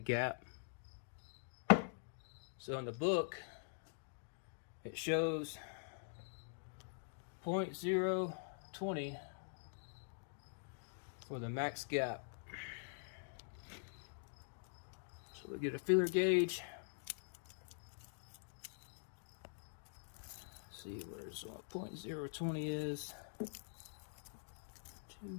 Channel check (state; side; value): silent; right; digital silence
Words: gap. So in the book, it shows 0.020 for the max gap. So we get a feeler gauge. See where's what 0.020 is.